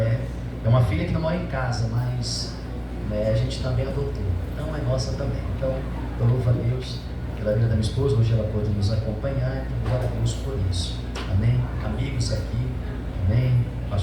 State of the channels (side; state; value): both; identical; correlation 1.00